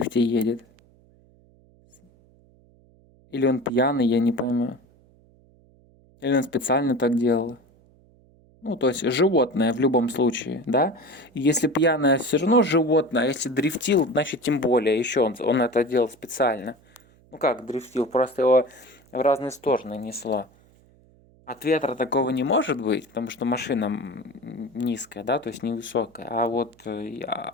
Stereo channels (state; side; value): noise; right; hum, 29 dB below the sound